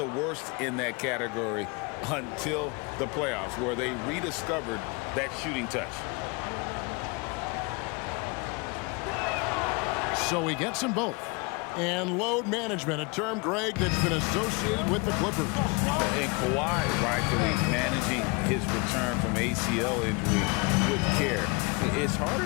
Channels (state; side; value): quieter; right; 29.0 dB